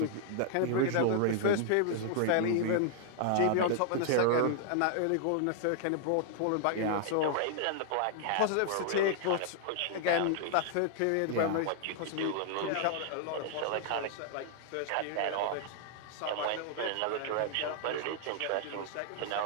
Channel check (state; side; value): different; both; correlation 0.00